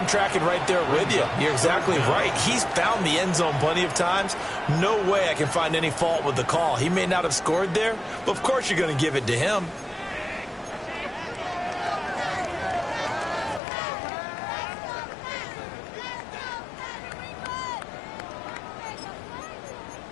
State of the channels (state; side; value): drops out; right; at 13.6 s